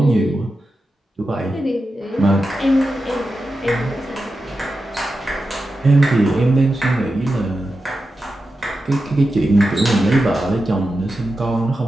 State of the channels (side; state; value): both; normal; correlation 0.91